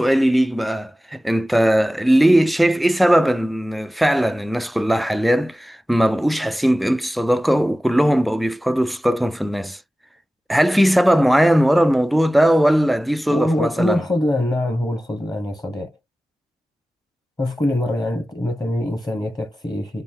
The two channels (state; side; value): normal; both; correlation 0.96